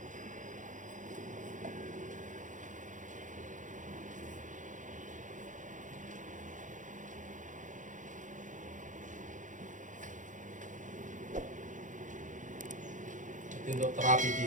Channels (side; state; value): left; late; 0.37 ms